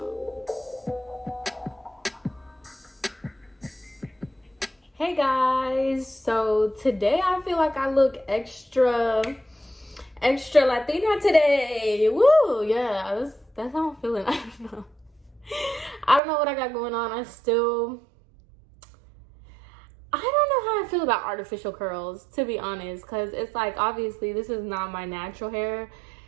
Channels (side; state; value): left; drops out; at 16.2 s